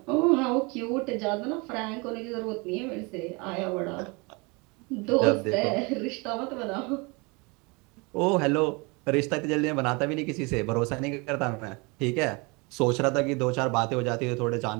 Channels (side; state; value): left; quieter; 28.5 dB